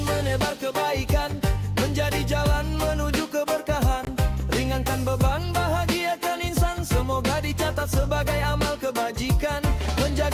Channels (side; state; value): both; identical; correlation 1.00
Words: menebar kebaikan, menjadi jalan menuju keberkahan. Ringankan beban, bahagiakan insan, semoga dicatat sebagai amal kebajikan.